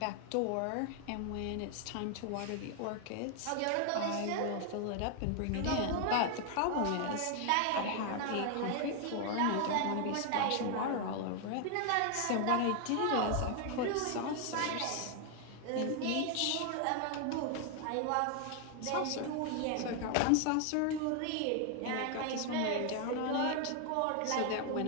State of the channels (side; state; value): both; different; correlation 0.00